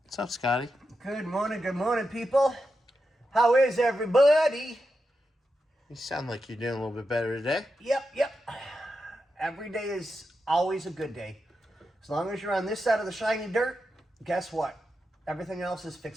What's up, Scotty? Good morning, people. How is everybody? You sound like you're doing a little bit better today. Yep. Every day is always a good day. As long as you're on this side of the shiny dirt, guess what? Everything else is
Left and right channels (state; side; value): normal; both; correlation 0.88